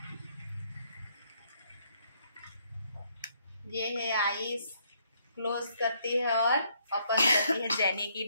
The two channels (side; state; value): both; inverted; correlation -0.70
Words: ये है आईज, क्लोज करती है और ओपन करती है जेनी की